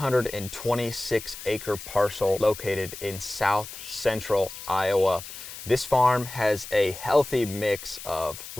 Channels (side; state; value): left; noise; hiss, 12 dB below the sound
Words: acre parcel located in south central Iowa. This farm has a healthy mix of